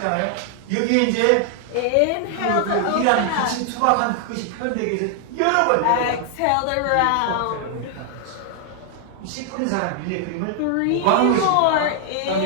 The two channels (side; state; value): both; different; correlation 0.00